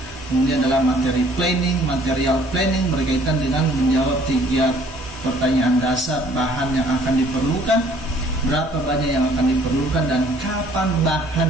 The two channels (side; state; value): both; normal; correlation 0.58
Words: Kemudian adalah materi planning, material planning berkaitan dengan menjawab 3 pertanyaan dasar: bahan yang akan diperlukan, berapa banyak yang akan diperlukan, dan kapan